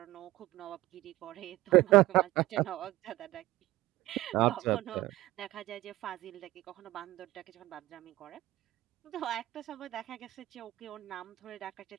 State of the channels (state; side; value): quieter; left; 17.4 dB